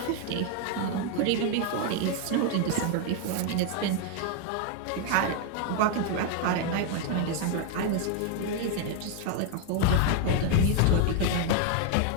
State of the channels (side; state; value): both; different; correlation 0.01